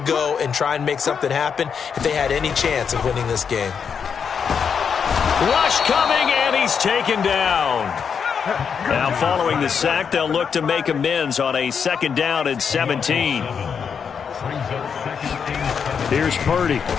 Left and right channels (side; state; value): right; quieter; 6.7 dB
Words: and try and make something happen if they had any chance of winning this game. Rush coming, and he's taken down. Now following the sack, they'll look to make amends on a 2nd down and 17. Here's Purdy.